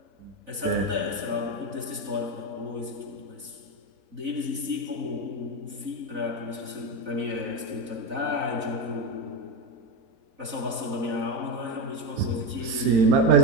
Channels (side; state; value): left; late; 4.0 ms